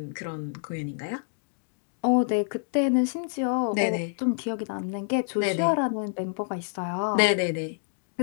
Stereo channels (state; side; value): silent; right; digital silence